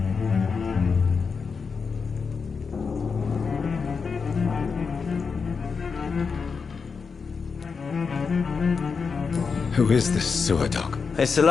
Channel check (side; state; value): right; quieter; 5.3 dB